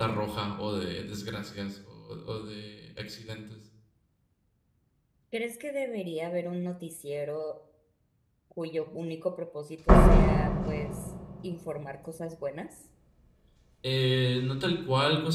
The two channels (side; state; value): both; identical; correlation 1.00